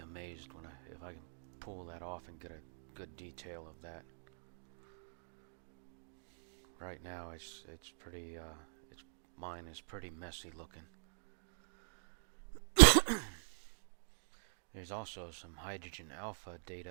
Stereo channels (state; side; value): silent; left; digital silence